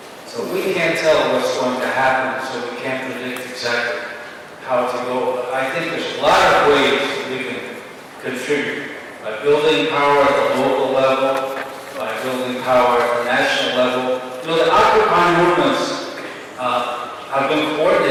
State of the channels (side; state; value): both; identical; correlation 1.00